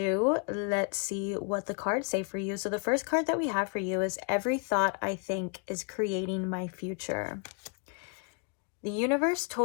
let's see what the cards say for you. So the first card that we have for you is every thought I think is creating my future. The universe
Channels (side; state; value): right; quieter; 38.8 dB